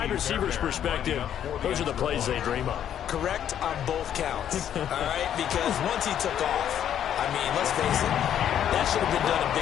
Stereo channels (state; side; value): quieter; right; 10.0 dB